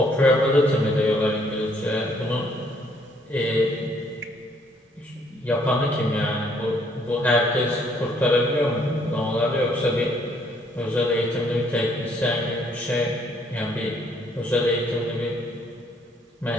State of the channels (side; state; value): both; normal; correlation 0.66